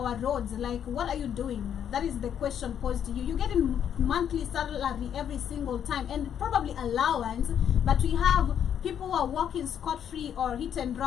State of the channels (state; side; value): quieter; right; 9.1 dB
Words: roads? Like, what are you doing? That is the question posed to you. You're getting monthly salary every single time, and probably allowance. But we have people who are walking scot-free or hit and